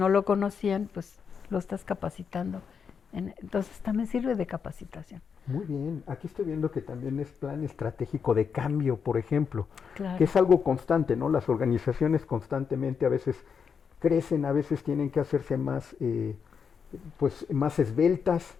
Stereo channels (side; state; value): right; quieter; 6.5 dB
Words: lo conocían, pues lo estás capacitando. Entonces también sirve de capacitación. Muy bien. Aquí estoy viendo que también es plan estratégico de cambio, por ejemplo, Claro. que es algo constante, ¿no? Las organizaciones constantemente a veces crecen, a veces tienen que hacerse más, pues, más esbeltas.